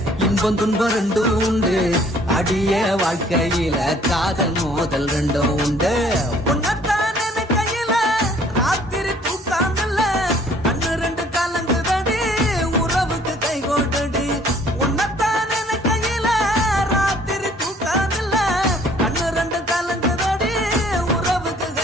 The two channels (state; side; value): normal; both; correlation 0.58